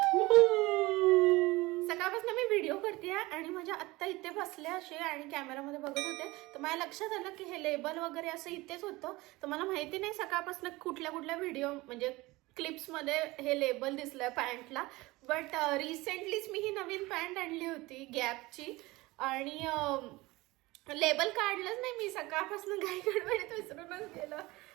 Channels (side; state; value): left; quieter; 21.0 dB